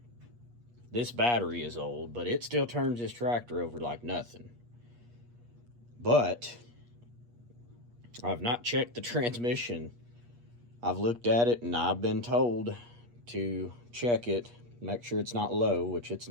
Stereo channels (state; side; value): late; left; 8.4 ms